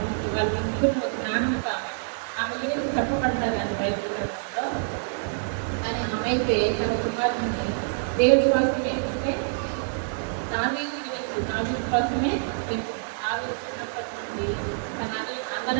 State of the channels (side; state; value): left; silent; digital silence